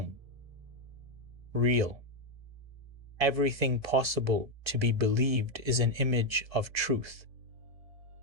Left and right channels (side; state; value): left; late; 1.7 ms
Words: real. Everything possible to be believed is an image of truth.